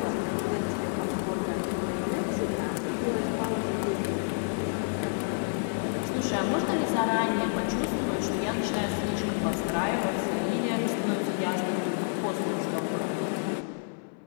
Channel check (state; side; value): silent; right; 58 dB below the other